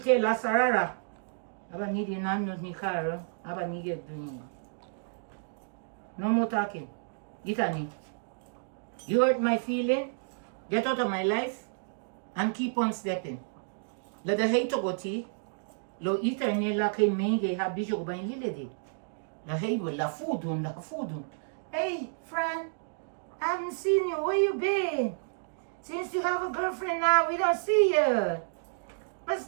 la sarara. Aba ni di nanu ni kar. Aba ni get duni. No more talking. Itani, you hurt my feeling, get out of my life, and keep on stepping. Let the hate go tea, lo iterne la ke menge ha bijo ba lile de. La hate will la food. Hey, Fran, I haven't seen you. Where you been? Since you have a girlfriend now, we don't see you. What's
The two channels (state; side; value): silent; left; digital silence